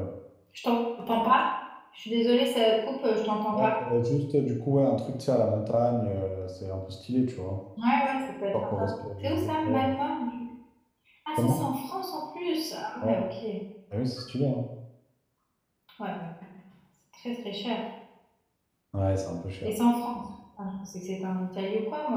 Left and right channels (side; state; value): both; identical; correlation 1.00